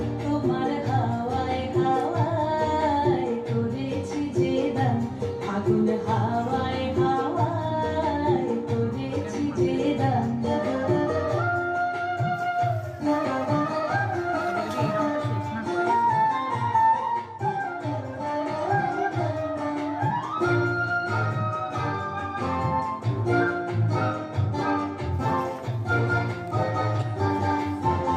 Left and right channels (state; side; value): identical; both; correlation 1.00